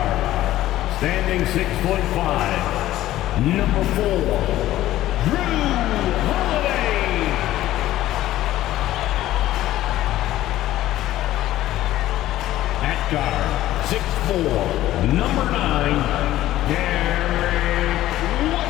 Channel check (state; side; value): quieter; right; 14.5 dB